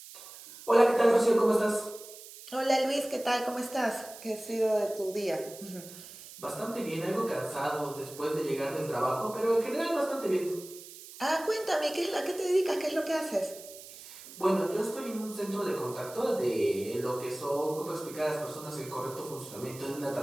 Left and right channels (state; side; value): noise; right; hiss, 16 dB below the sound